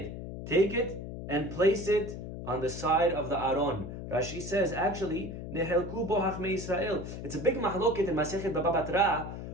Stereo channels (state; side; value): noise; left; hum, 8 dB below the sound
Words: Take it and place it on the side of the Aron. Rashi says, actually, nehelku bo hachmei Israel. It's a big mahloket in Masechet Baba Batra.